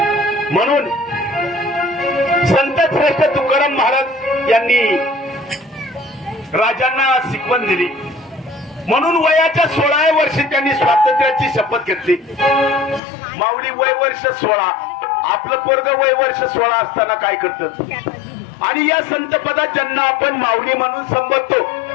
म्हणून संत श्रेष्ठ तुकाराम महाराज यांनी राजांना शिकवण दिली. म्हणून वयाच्या 16व्या वर्षी त्यांनी स्वातंत्र्याची शपथ घेतली. माऊली वय वर्ष 16, आपलं पोरग वय वर्ष 16 असताना काय करतात. आणि या संत पदात ज्यांना आपण माऊली म्हणून संबोधतो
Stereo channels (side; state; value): right; drops out; at 13.0 s